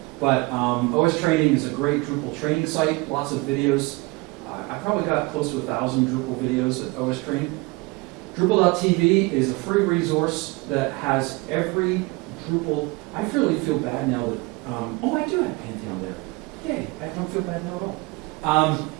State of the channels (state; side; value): quieter; left; 25.0 dB